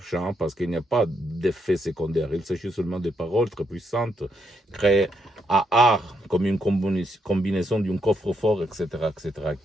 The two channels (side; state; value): both; normal; correlation 0.78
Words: parce qu'il n'y a pas d'effet secondaire, il s'agit seulement de paroles très puissantes, créées à art, comme une combinaison d'un coffre-fort, etc.,